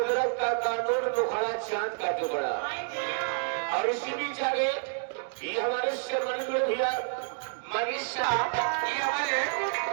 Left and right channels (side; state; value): left; silent; 58 dB below the other